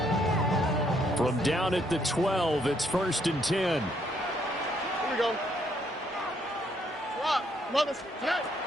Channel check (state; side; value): normal; both; correlation 0.71